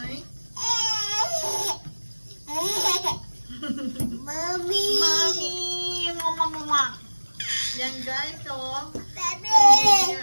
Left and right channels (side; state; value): both; inverted; correlation -1.00